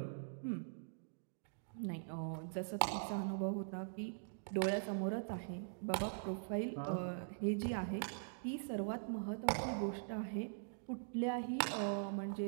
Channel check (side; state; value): left; silent; digital silence